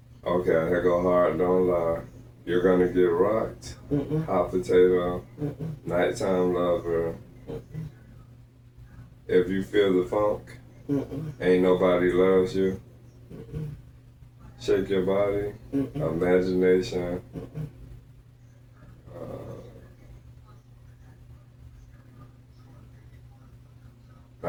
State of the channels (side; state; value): both; identical; correlation 1.00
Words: Okay, here go Hard Don't Lie. You're Gonna Get Rocked. Hot Potato. Nighttime Lover. If You Feel the Funk. Ain't Nobody Loves You. Shake Your Body. Imagination.